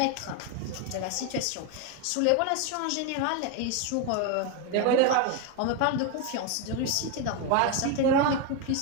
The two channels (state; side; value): different; both; correlation 0.02